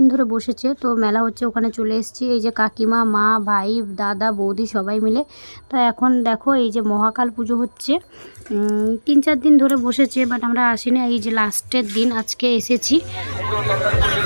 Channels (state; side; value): inverted; both; correlation -1.00